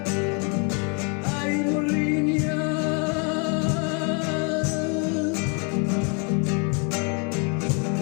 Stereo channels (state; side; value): quieter; right; 36.3 dB